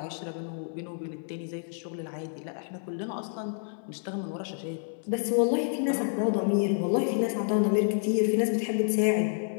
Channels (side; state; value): right; silent; 58 dB below the other